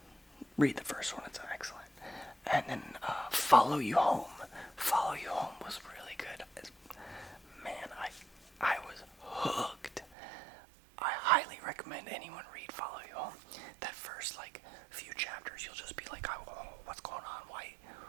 Read the first one, it's excellent. And then Follow You Home. Follow You Home was really good. Man, I was hooked. I highly recommend anyone read Follow You Home. That first few chapters, you'll just be like, oh, what's going on? Why,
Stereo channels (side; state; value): left; drops out; at 10.2 s